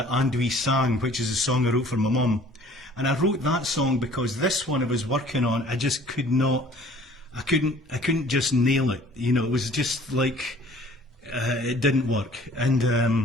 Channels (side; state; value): both; normal; correlation 0.52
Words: We Sang, which is a song I wrote for my mum. And I wrote that song because this one I was working on, I just could not, I couldn't just nail it. You know, it was just like, it didn't work. And